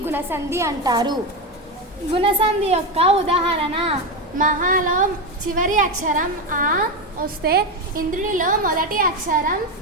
గుణసంధి అంటారు. గుణసంధి యొక్క ఉదాహరణ: మహాలో చివరి అక్షరం ఆ వస్తే ఇంద్రుడిలో మొదటి అక్షరం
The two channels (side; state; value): both; normal; correlation 0.13